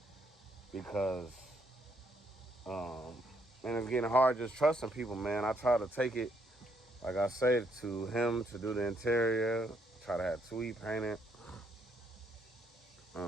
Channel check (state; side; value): normal; both; correlation 0.72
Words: because and it's getting hard just trusting people, man. I try to take it, like I say, to him to do the interior. Try to have Tweet paint it.